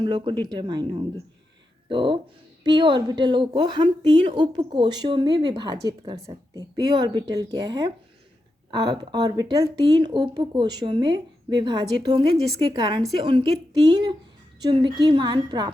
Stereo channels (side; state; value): both; normal; correlation 0.87